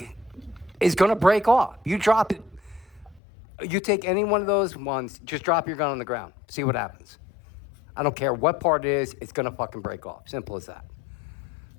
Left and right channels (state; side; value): drops out; right; at 3.2 s